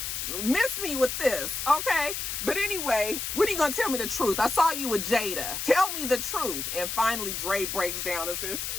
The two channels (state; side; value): noise; left; hiss, 4 dB below the sound